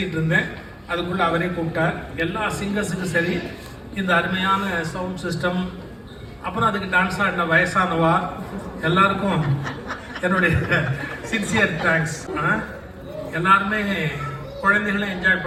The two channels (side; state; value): both; identical; correlation 1.00